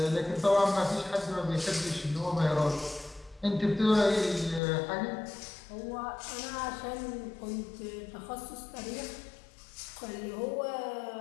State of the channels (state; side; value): drops out; right; at 4.6 s